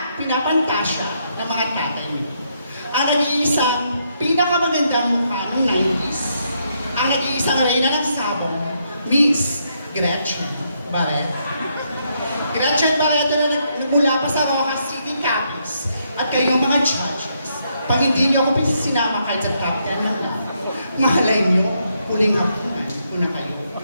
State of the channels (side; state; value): both; inverted; correlation -0.77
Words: pinapantasya ng mga tatay nyo. Ang nag-iisang pinakamagandang mukha ng 90s, ang nag-iisang reyna ng sabong, Miss Gretchen Barreto. Gretchen Barreto na nagmula pa sa Rojas City Capiz at kayong mga judges. Pag hindi niyo ako sinama kahit sa top 10 na lang, mahalay niyo, huling hapunan ko na kayo.